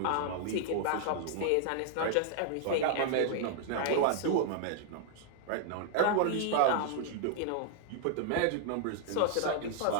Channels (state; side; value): different; both; correlation -0.01